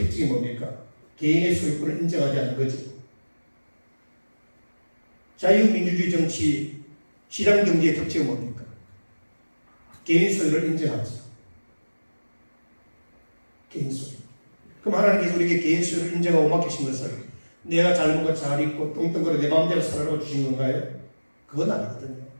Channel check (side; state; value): both; inverted; correlation -1.00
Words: 특징이 뭡니까? 개인의 소유권을 인정하지 않는 거죠. 자유민주주의 정치, 시장경제의 특징은 뭡니까? 개인 소유를 인정하죠. 개인 소유. 그럼 하나님께서 우리에게 개인 소유를 인정하고 맡기신 것을 내가 잘 먹고 잘 입고 뚱뚱거려 내 마음대로 살아라고 주신 건가요? 그건 아니거든요.